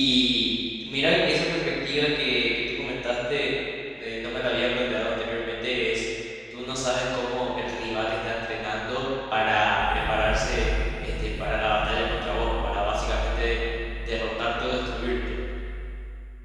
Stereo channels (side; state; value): both; identical; correlation 1.00